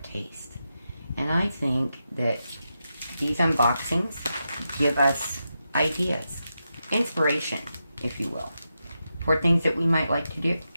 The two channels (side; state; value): both; inverted; correlation -0.88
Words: tastes. And I think that these unboxings give us ideas, inspiration, if you will, for things that we might like to do